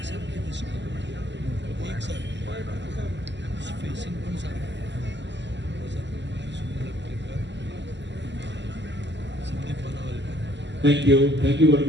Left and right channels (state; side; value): late; left; 0.52 ms